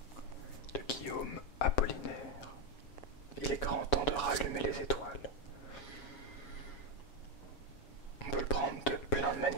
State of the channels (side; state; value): right; late; 7.0 ms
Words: De Guillaume Apollinaire. Il est grand temps de rallumer les étoiles. On peut le prendre de plein de